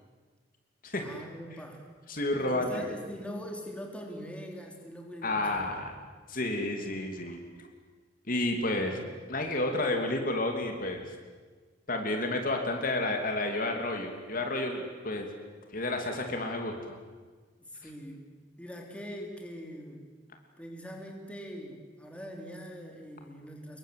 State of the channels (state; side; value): normal; both; correlation 0.16